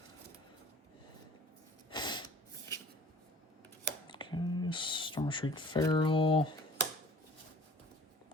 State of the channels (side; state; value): both; normal; correlation 0.48